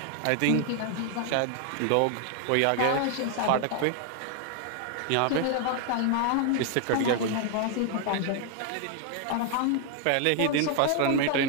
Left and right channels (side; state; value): both; different; correlation 0.00